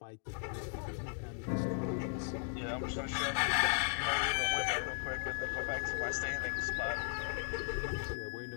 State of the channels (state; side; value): silent; right; 53 dB below the other